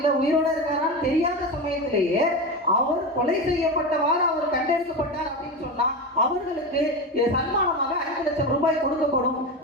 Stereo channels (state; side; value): normal; both; correlation 0.20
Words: உயிரோட இருக்காரான்னு தெரியாத சமயத்திலேயே அவர் கொலை செய்யப்பட்டவாறு அவர் கண்டெடுக்கப்பட்டார் அப்படின்னு சொன்னா அவர்களுக்கு சன்மானமாக 5 லட்சம் ரூபாய் கொடுக்கப்படும்